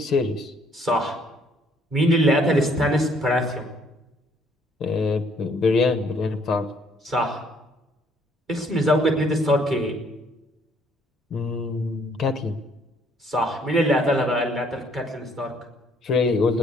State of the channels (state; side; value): normal; both; correlation 0.64